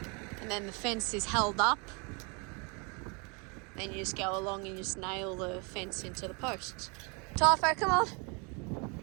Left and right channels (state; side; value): quieter; left; 32.4 dB